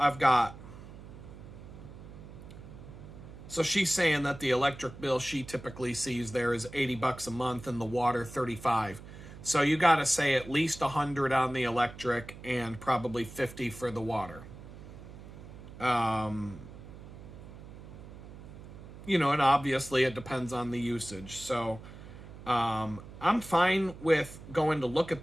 got... So she's saying that the electric bill she typically sees there is $80 a month and the water $35. So you got to say at least $100 on the electric and probably $50 for the water. You know, and obviously it depends on the usage. So I'm fine with going to look at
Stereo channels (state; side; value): noise; right; hum, 15 dB below the sound